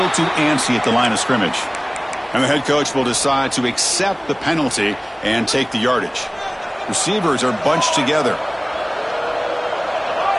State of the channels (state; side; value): identical; both; correlation 1.00